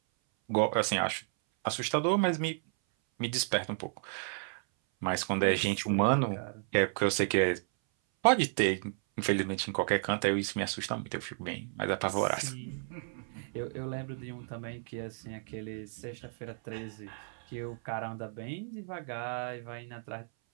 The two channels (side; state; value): left; silent; 56 dB below the other